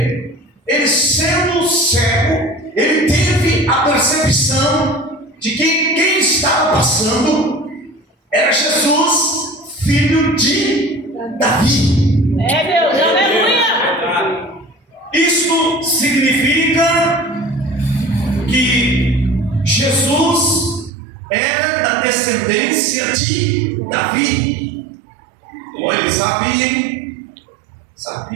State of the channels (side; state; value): left; drops out; at 20.9 s